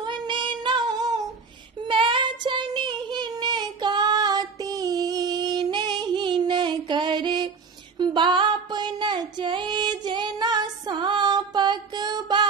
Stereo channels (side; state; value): left; quieter; 5.1 dB